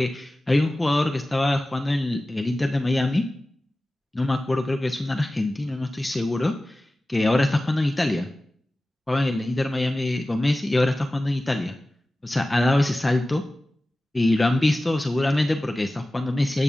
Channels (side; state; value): both; normal; correlation 0.96